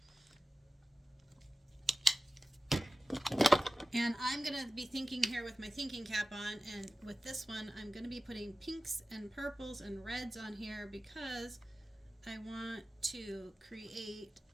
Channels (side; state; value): both; normal; correlation 0.95